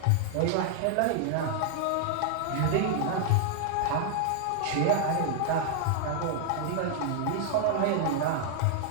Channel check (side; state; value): both; different; correlation 0.00